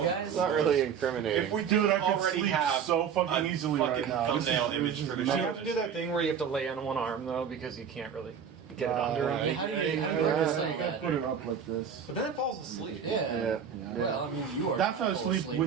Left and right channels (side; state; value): left; quieter; 7.4 dB